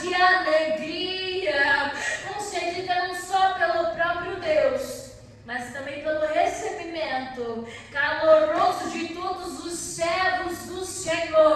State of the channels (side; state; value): both; identical; correlation 1.00